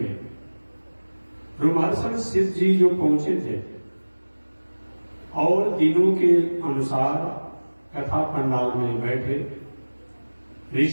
रोमहर्षण सिद्ध जी जो पहुंचे थे और दिनों के अनुसार कथा पंडाल में बैठे,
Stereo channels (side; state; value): both; inverted; correlation -1.00